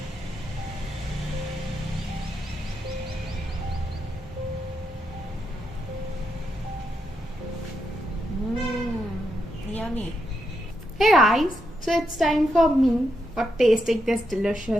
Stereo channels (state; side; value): normal; both; correlation 0.82